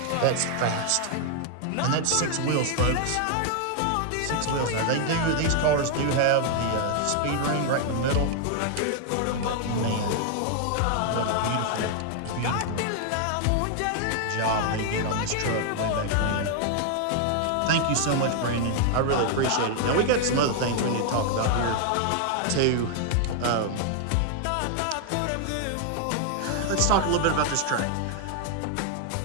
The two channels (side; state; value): both; different; correlation 0.00